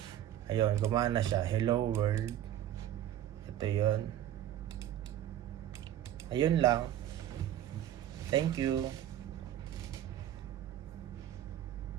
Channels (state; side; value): quieter; left; 11.9 dB